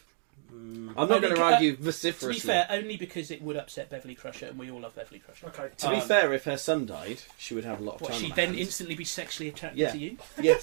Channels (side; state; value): left; silent; 58 dB below the other